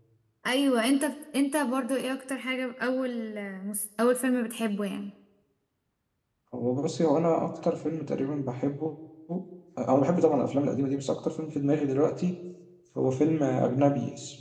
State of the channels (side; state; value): both; identical; correlation 1.00